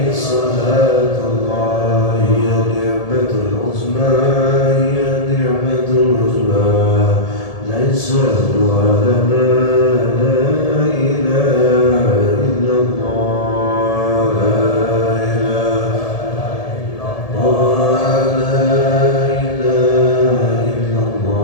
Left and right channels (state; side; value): late; right; 1.7 ms